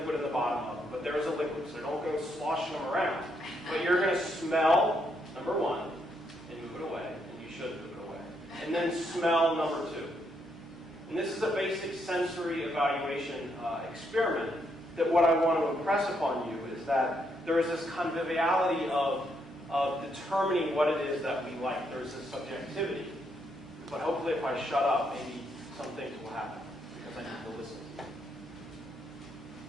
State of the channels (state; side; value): normal; both; correlation 0.76